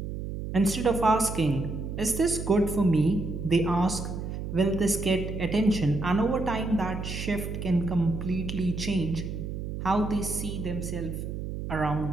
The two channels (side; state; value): right; noise; hum, 6 dB below the sound